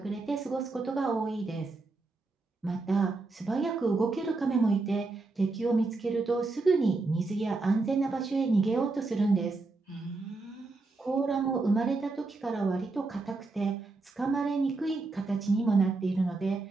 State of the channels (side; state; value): left; quieter; 3.6 dB